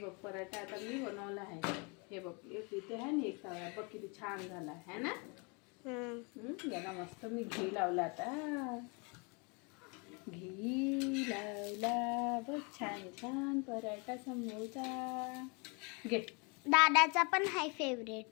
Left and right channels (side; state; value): right; quieter; 32.3 dB